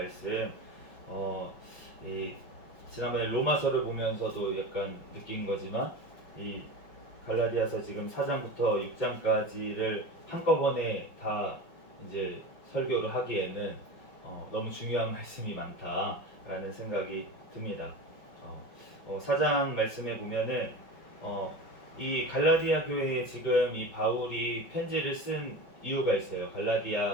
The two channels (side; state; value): right; late; 5.7 ms